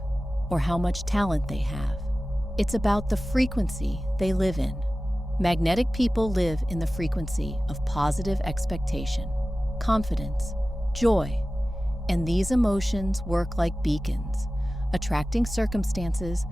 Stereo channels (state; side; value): normal; both; correlation 0.96